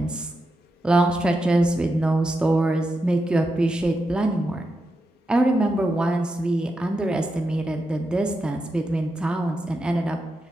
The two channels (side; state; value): both; normal; correlation 0.87